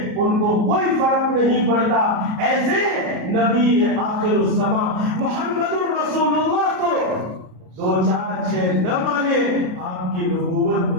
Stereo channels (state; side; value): late; left; 33 ms